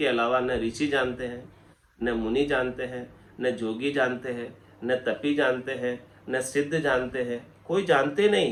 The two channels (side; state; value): both; identical; correlation 1.00